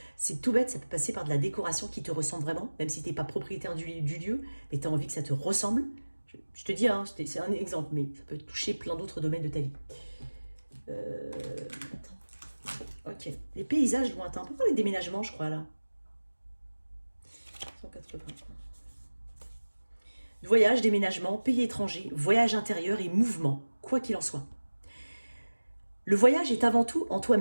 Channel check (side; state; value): both; inverted; correlation -1.00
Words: C'est tout bête, ça peut passer par de la décoration qui te ressemble vraiment, même si tu n'es pas propriétaire du lieu, mais tu as envie que ça te ressemble. Je te dis, hein, c'est un exemple, mais ça peut toucher plein d'autres domaines de ta vie. Attends. Ok. Les paysages lointains. On peut parler de déménagement, je crois, là. 180. Voyage, déménagement, pays étranger, voyage intérieur et mouvement, quoi qu'il en soit. Le voyage est avant tout en